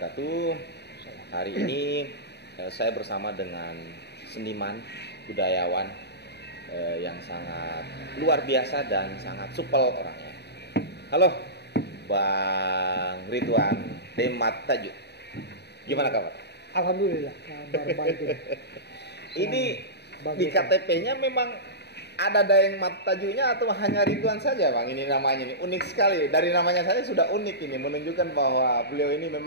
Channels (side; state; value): right; late; 0.49 ms